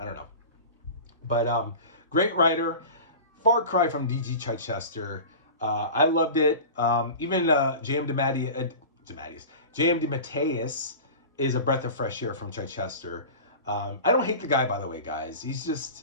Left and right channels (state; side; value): inverted; both; correlation -0.34